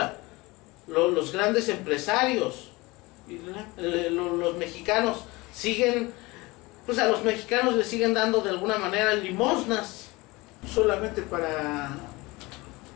Los grandes empresarios. Los mexicanos siguen, pues a los mexicanos les siguen dando de alguna manera limosnas. Solamente para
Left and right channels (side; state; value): right; quieter; 22.8 dB